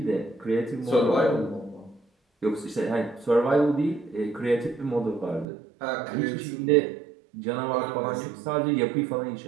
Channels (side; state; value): left; drops out; at 5.5 s